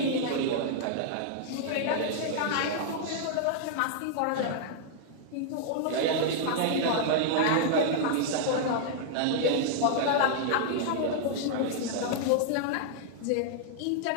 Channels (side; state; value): both; different; correlation -0.01